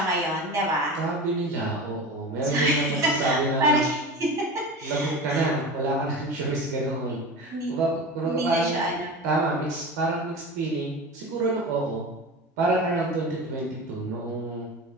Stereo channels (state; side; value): normal; both; correlation 0.30